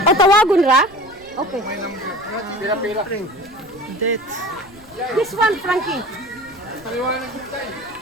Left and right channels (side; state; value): right; noise; rumble, 26 dB below the sound